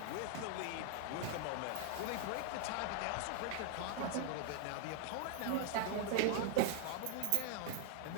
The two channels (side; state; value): both; different; correlation 0.00